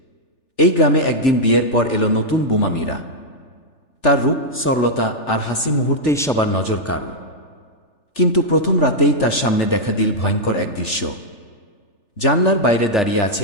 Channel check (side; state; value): right; late; 3.4 ms